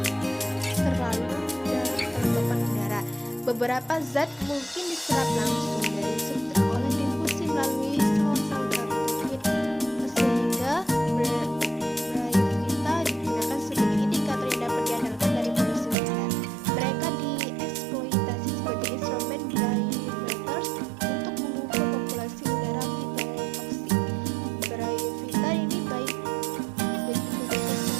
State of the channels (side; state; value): left; drops out; at 16.0 s